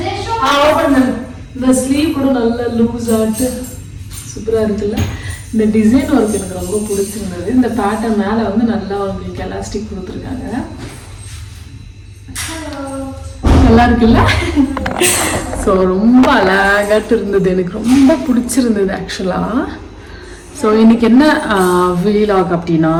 இந்த ஸ்லீவ் கூட நல்லா லூஸ் ஆகிட்டு சூப்பராக இருக்குல்ல. இந்த டிசைன் ஒர்க் எனக்கு ரொம்ப பிடிச்சிருந்தது. இந்த பேட்டர்ன் மேலே நல்லா உங்களுக்கு எலாஸ்டிக் கொடுத்துருக்காங்க, நல்லா இருக்குல்ல. ஸோ ரொம்ப அழகாட்டு இருந்தது, எனக்கு ரொம்ப பிடிச்சிருந்தது ஆக்சுவலாக. ஸோ இன்றைக்கி என்ன வீலாக் அப்படின்னா,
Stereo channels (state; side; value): identical; both; correlation 1.00